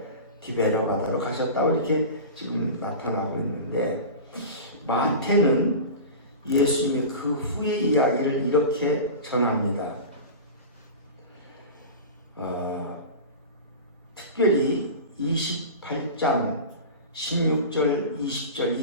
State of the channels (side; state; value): both; inverted; correlation -0.30